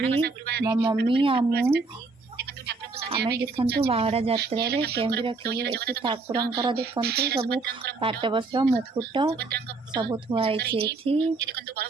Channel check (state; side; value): quieter; left; 3.8 dB